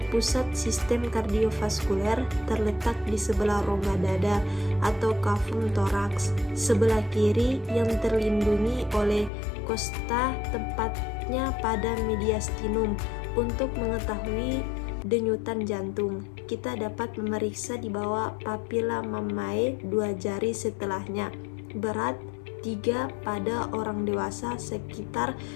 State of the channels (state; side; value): drops out; right; at 9.3 s